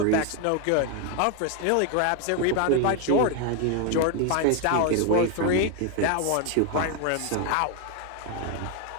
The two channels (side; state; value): both; different; correlation 0.01